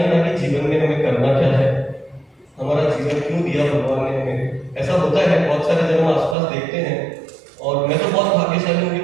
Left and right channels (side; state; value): left; drops out; at 6.4 s